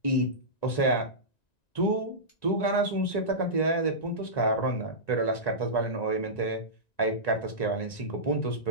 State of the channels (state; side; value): late; right; 1.9 ms